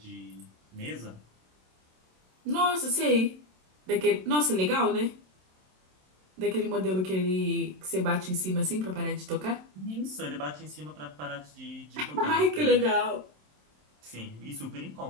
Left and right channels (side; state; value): left; late; 27 ms